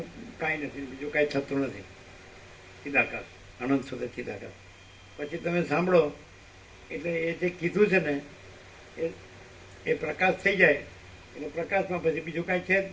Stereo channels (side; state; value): both; identical; correlation 1.00